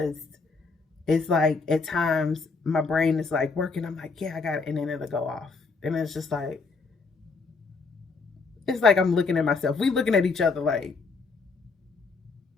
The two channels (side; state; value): right; quieter; 4.3 dB